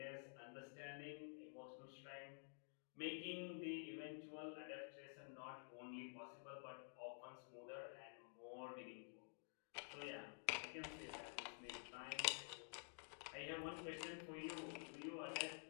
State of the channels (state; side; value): silent; right; digital silence